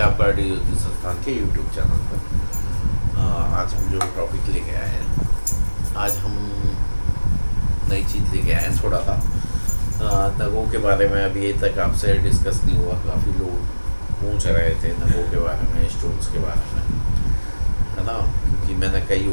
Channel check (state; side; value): inverted; both; correlation -1.00